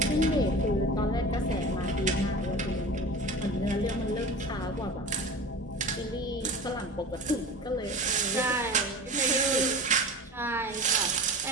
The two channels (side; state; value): both; normal; correlation 0.34